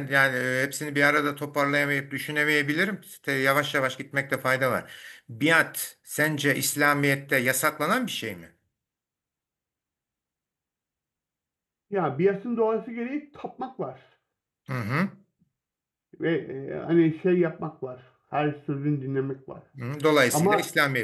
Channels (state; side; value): identical; both; correlation 1.00